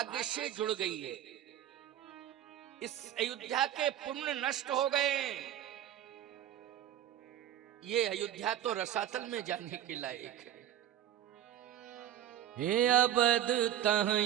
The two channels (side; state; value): left; quieter; 11.3 dB